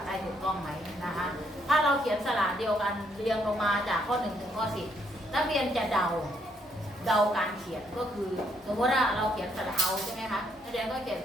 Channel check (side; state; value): both; normal; correlation 0.72